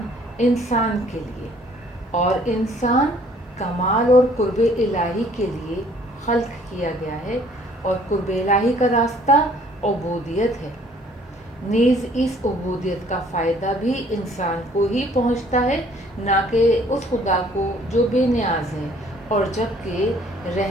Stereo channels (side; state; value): both; normal; correlation 0.58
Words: انسان کے لیے اور انسان کمال اور قرب الہی کے لیے خلق کیا گیا ہے، اور قرب الہی کا راستہ عبودیت ہے. نیز اس عبودیت کا فائدہ بھی انسان کو ہی پہنچتا ہے، نہ کہ اس خدا کو جو بے نیاز ہے، اور جبکہ